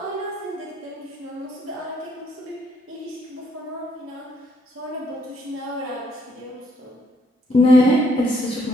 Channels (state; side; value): normal; both; correlation 0.70